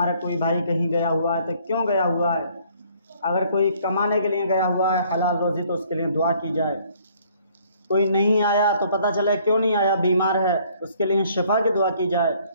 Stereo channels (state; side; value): inverted; both; correlation -0.61